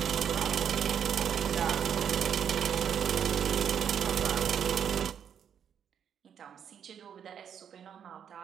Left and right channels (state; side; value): quieter; left; 8.4 dB